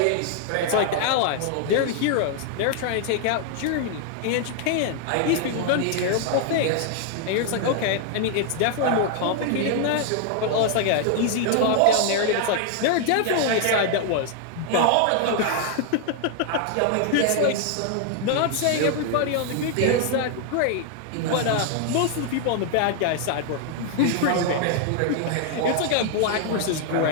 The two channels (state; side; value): different; both; correlation 0.00